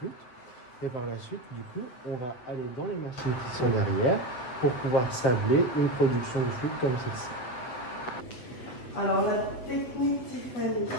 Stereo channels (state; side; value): late; right; 7.7 ms